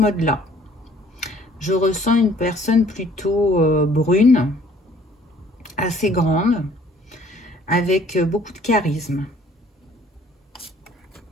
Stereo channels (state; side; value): normal; both; correlation 0.58